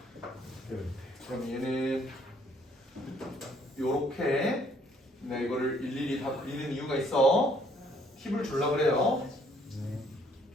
그럼 얘는 요렇게 내가 이거를 일일이 다 그리는 이유가 있어. 팁을 주려고 그래요.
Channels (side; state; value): both; normal; correlation 0.64